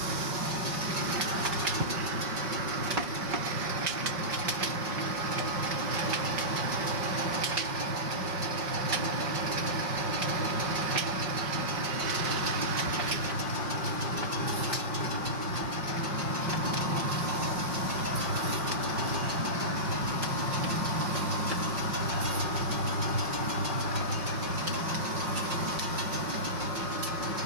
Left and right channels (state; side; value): late; left; 5.6 ms